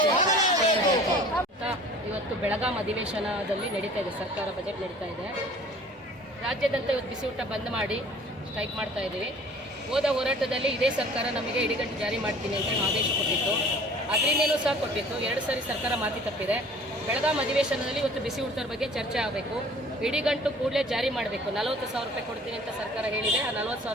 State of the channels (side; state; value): both; normal; correlation 0.48